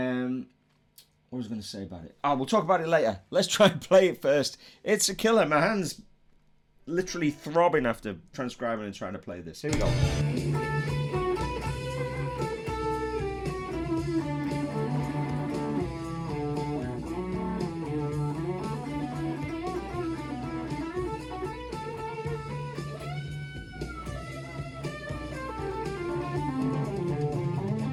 was I going to say about it? Oh, we'll talk about it later. Let's try and play it first. It's a killer. My hand's literally throbbing after transcribing and trying to play this. Here we go.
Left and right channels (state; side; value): identical; both; correlation 1.00